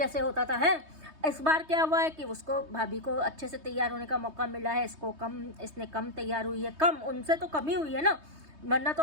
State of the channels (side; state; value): left; late; 3.2 ms